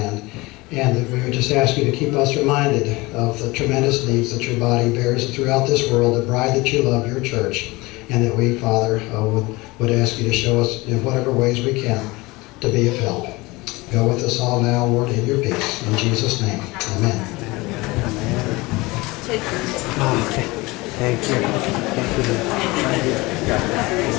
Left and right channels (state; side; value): quieter; right; 22.5 dB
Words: and that we would just ask you to keep us reminded of the tremendous needs that your body bears throughout this world, the bride that you love, your church, and that we, Father, would ask you to show us in whatever ways we can to be of help. Go with us all now, Lord, in your peace. In Jesus' name, amen. Okay. Thank you. Thank you.